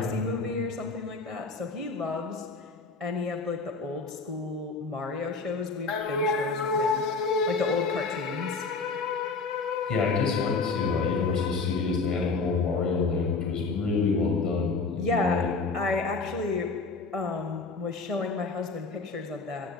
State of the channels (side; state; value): right; quieter; 4.1 dB